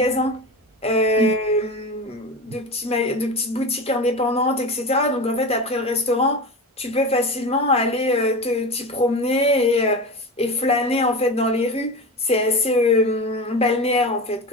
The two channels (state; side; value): normal; both; correlation 0.26